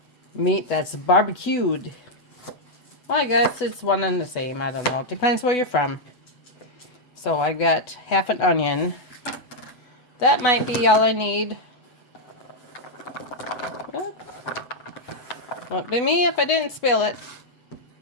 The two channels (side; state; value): right; late; 8.1 ms